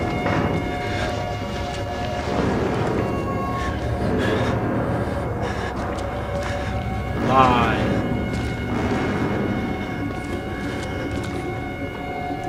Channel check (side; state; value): both; identical; correlation 1.00